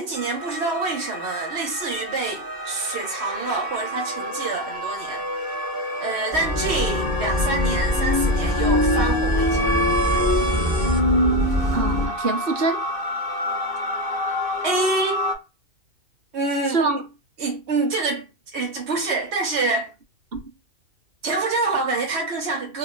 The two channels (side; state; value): left; late; 3.1 ms